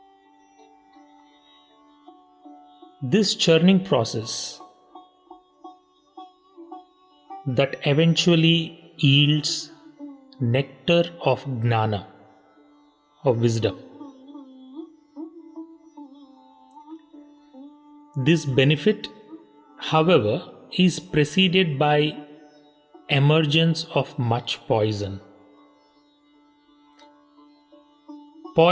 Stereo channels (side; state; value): both; identical; correlation 1.00